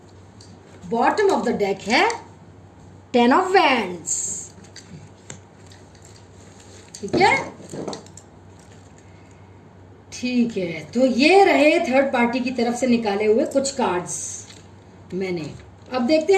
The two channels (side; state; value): both; identical; correlation 1.00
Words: Bottom of the deck है टेन ऑफ वैंड्स, ठीक है। ठीक है, तो ये रहे थर्ड पार्टी की तरफ से निकाले हुए कुछ कार्ड्स मैंने। अब देखते